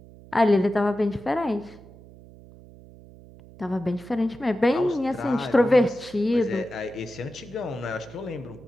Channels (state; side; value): noise; right; hum, 21 dB below the sound